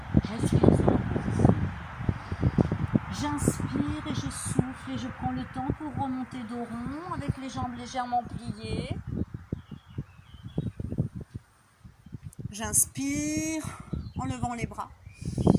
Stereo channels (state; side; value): identical; both; correlation 1.00